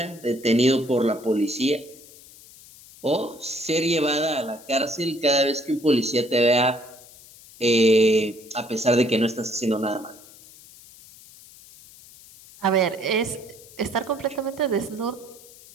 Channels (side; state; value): left; noise; hiss, 22 dB below the sound